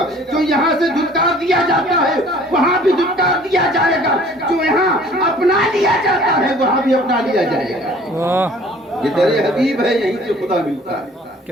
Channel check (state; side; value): normal; both; correlation 0.52